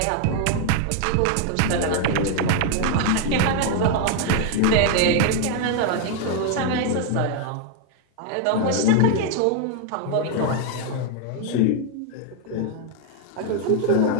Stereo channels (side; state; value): both; different; correlation 0.00